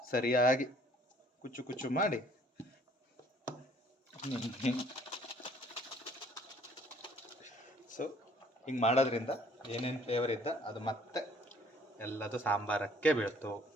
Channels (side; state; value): both; normal; correlation 0.58